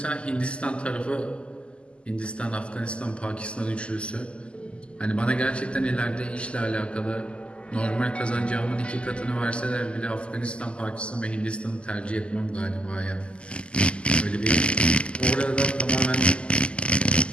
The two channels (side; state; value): right; late; 0.053 ms